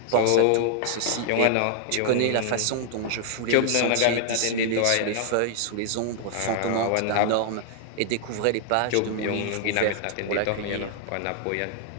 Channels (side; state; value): both; different; correlation 0.00